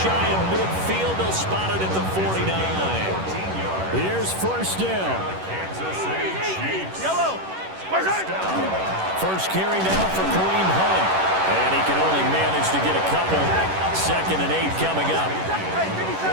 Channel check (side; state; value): left; late; 11 ms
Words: of midfield, they'll spot it at the 49. Here's 1st down. Kansas City Chiefs. Yellow. First carry now for Kareem Hunt. And he can only manage to get a couple. 2nd and 8 coming up.